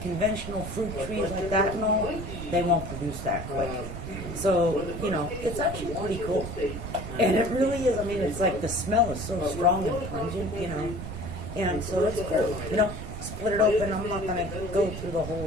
conventional fruit trees like that and all, they won't produce that quick. So, you know, it's actually pretty cool. And it really is, I mean, it's like the smell is so strong and pungent, you know, and so it's cool, you know. Split it open. I'm not going to go through the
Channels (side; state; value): right; noise; rumble, 8 dB below the sound